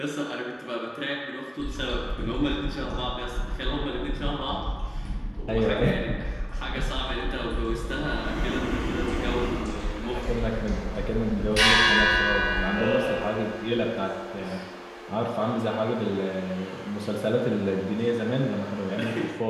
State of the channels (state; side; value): identical; both; correlation 1.00